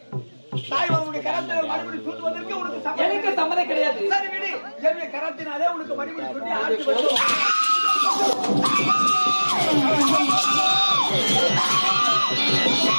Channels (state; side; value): inverted; both; correlation -1.00